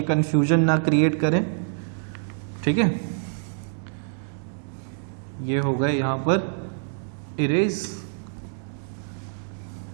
कन्फ्यूजन ना क्रिएट करें, ठीक है। ये हो गए यहाँ पर इरेज।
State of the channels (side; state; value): left; silent; 61 dB below the other